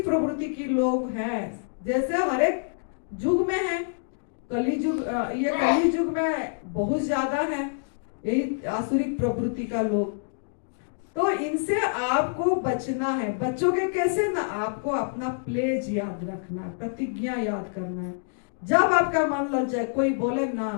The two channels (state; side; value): silent; right; digital silence